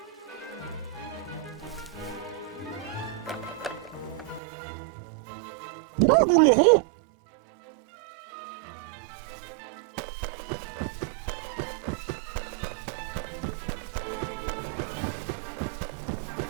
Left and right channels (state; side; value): drops out; left; at 4.4 s